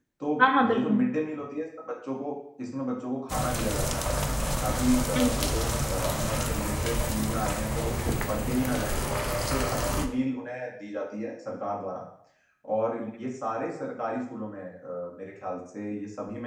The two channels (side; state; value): both; identical; correlation 1.00